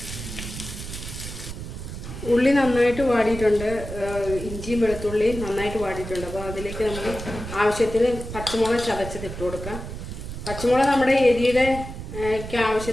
ഉള്ളി നന്നായിട്ട് വാടിയിട്ടുണ്ട്, ഇഞ്ചിയും വെളുത്തുള്ളിയും നന്നായിട്ട് വാടിയിട്ടുണ്ട്. അപ്പോൾ അതിലേക്ക് നമുക്ക് ആവശ്യത്തിന് പച്ചമുളക് ചതച്ചത് ഇട്ട് കൊടുക്കാം. പച്ചമുളക് നമ്മുടെ എരിയുടെ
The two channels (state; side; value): noise; right; rumble, 9 dB below the sound